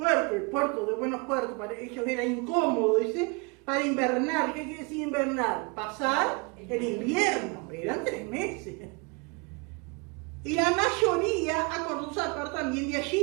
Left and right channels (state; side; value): quieter; left; 30.9 dB